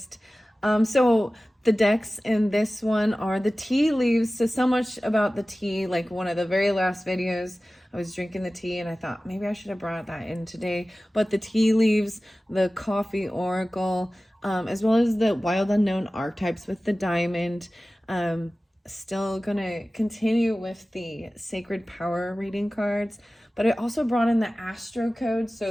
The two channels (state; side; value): normal; both; correlation 0.96